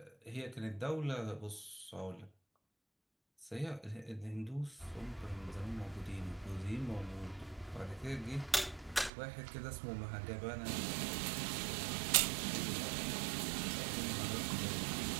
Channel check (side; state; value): left; drops out; at 9.1 s